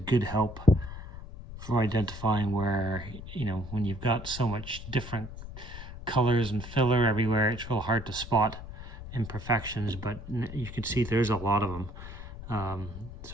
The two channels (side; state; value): left; noise; rumble, 12 dB below the sound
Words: help for identifying where, you know, when you've got so much different colors and filler everywhere, it's real hard to spot imperfections, but you can see there's a lot of them.